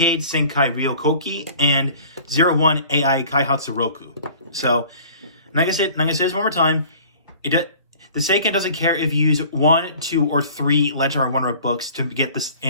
Senkai Ryokoki and 01 AI Kaihatsu Roku. So, like I said, I'm gonna say this one more time. The Seiken doesn't care if you use 1, 2, or 3 Legendary Wonder books to get this,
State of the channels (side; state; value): both; inverted; correlation -0.47